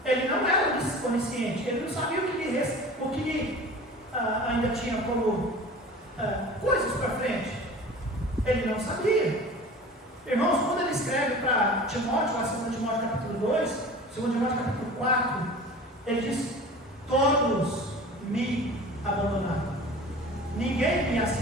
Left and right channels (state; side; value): normal; both; correlation 0.39